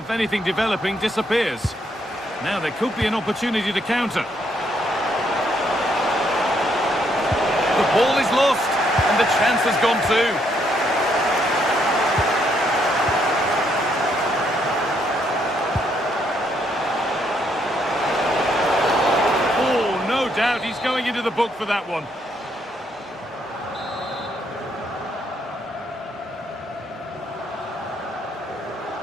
anything developing disappears. Now there could be an opportunity to counter. The ball is lost, and the chance has gone too. Oh, no doubt he's going into the book for that one.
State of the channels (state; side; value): normal; both; correlation 0.73